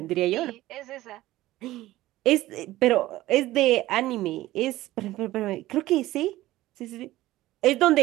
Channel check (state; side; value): quieter; left; 16.4 dB